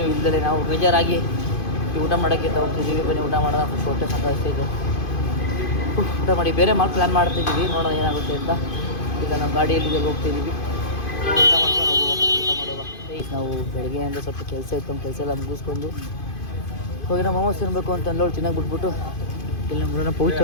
ಇಲ್ಲದೆ ನಾವು ಬೇಜಾರಾಗಿ ಊಟ ಮಾಡೋಕ್ಕೆ ಹೋಗ್ತಿದ್ದೀವಿ. ಬನ್ನಿ ಊಟ ಮಾಡೋಣ. ಹೊಟ್ಟೆ ಸಾಕಾಗ್ತಿದೆ. ಊಟ ಮಾಡಿ ಬೇರೆ ಪ್ಲ್ಯಾನ್ ಮಾಡ್ತಿದ್ದೀವಿ. ನೋಡೋಣ ಏನಾಗುತ್ತೆ ಅಂತ. ಈಗ ನಾವು ಗಾಡಿಯಲ್ಲಿ ಹೋಗ್ತಿದ್ದೀವಿ. ಊಟ ಮಾಡ್ಕೊಂಡು ಊಟ ಮಾಡುವ. ನಾವು ಬೆಳಗ್ಗೆಯಿಂದ ಸ್ವಲ್ಪ ಕೆಲಸ ಇತ್ತು. ನಮ್ಮ ಕೆಲಸ ಎಲ್ಲ ಮುಗಿಸ್ಕೊಂಡು ಹೋಗಿ ನಾವು ಮೋಮೋಸ್ ತಿನ್ನಬೇಕು ಅಂತ ಅಲ್ಲೋಳು ತಿನ್ನಕ್ಕೆ ಬಿಟ್ಬಿಟ್ಟು ಇಲ್ಲಿ ನೋಡೋಣ ಪೌಚ್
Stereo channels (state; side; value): late; right; 2.5 ms